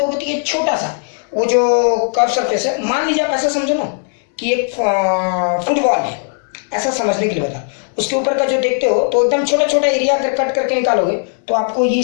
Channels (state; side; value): silent; right; 56 dB below the other